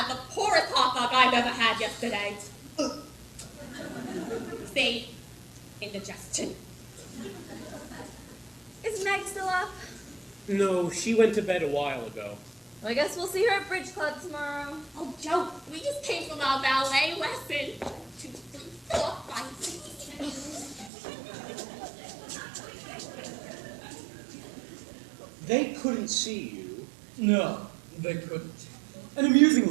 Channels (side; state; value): left; drops out; at 20.9 s